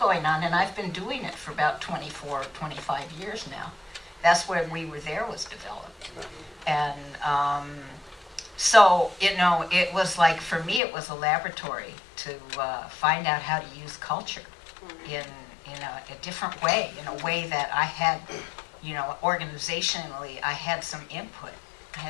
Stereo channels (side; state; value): right; drops out; at 10.8 s